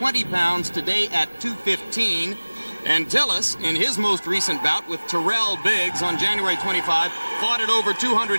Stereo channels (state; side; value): inverted; both; correlation -1.00